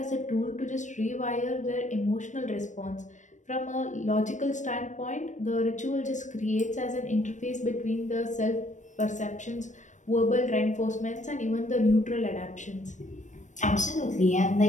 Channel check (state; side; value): late; right; 0.35 ms